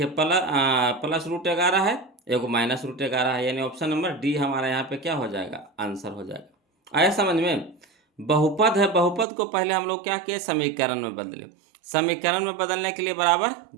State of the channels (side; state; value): left; drops out; at 9.2 s